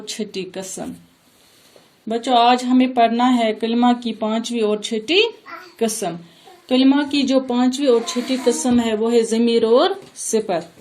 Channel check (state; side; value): identical; both; correlation 1.00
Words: छठी कसम। बच्चों, आज हमें पढ़ना है कलिमा की पांचवी और छठी कसम। कलिमा की जो पांचवी और छठी कसम है वो है ज़मीर और